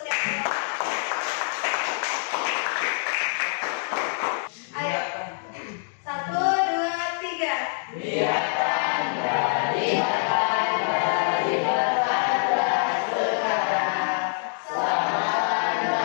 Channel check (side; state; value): right; silent; digital silence